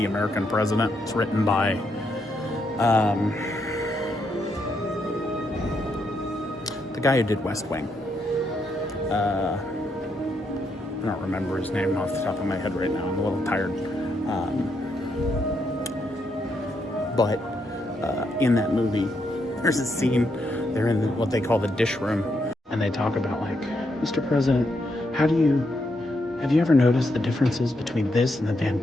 American President. It's written by the guy who did West Wing. I don't remember his name off the top of my head right now. I'm a little tired. But in that movie, there's a scene, they're in what they call the dish room, and they talk about, like, Mr. President, have you ever noticed the differences between this and the Van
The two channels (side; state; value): both; normal; correlation 0.79